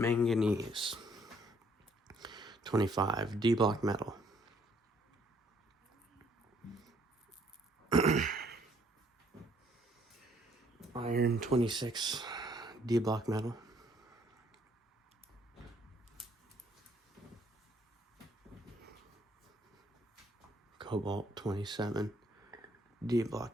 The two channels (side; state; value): both; normal; correlation 0.65